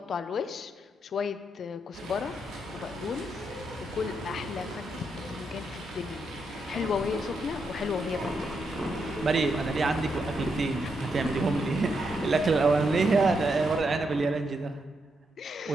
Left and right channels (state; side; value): normal; both; correlation 0.81